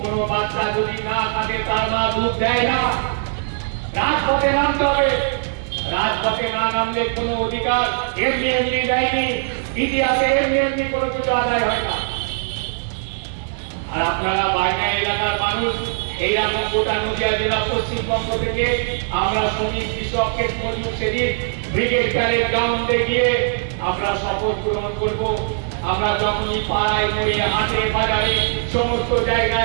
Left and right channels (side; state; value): left; silent; digital silence